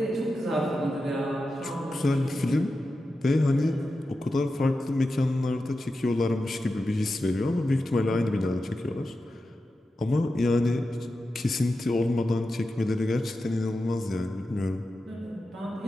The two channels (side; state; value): both; normal; correlation 0.91